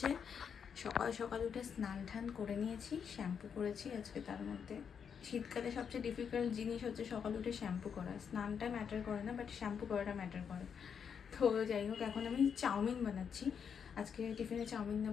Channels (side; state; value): right; quieter; 7.1 dB